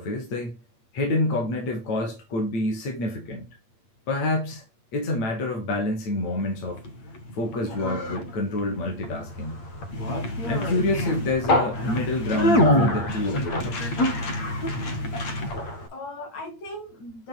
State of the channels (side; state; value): right; late; 8.5 ms